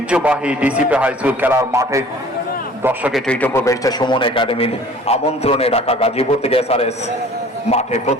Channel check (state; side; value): normal; both; correlation 0.49